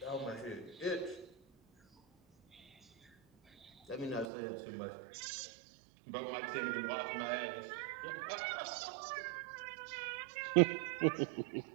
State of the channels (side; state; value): left; drops out; at 4.3 s